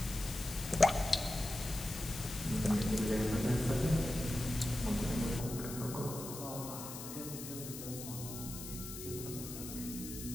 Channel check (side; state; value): left; noise; hiss, 9 dB below the sound